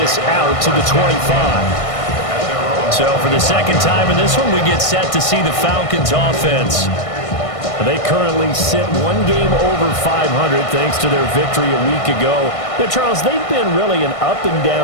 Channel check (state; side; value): late; right; 1.6 ms